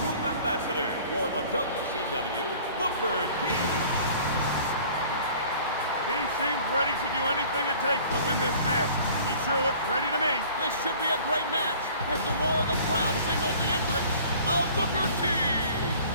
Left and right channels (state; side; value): inverted; both; correlation -0.49